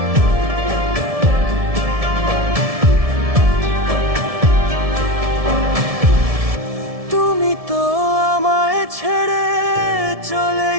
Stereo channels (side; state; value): left; late; 1.7 ms